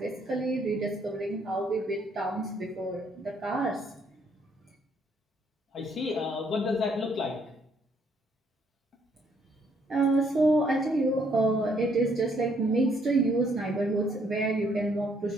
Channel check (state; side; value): normal; both; correlation 0.69